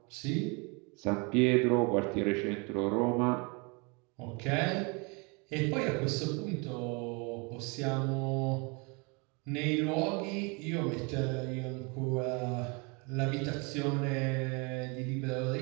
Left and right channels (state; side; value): quieter; left; 30.8 dB